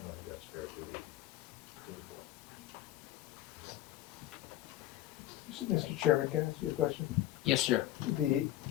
don't think that's fair to the board. Mr. Chairman, can I ask you a question? Yes, sir.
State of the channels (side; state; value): right; quieter; 14.1 dB